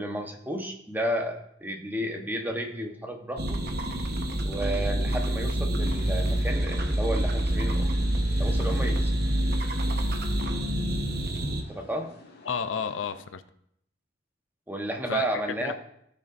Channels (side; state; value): both; normal; correlation 0.76